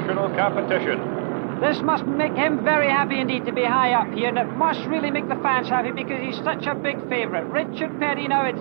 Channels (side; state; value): left; silent; 64 dB below the other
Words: competition. This must make him very happy indeed to be high up here, and it must really make the fans happy because he's such a big favorite. Richard Petty now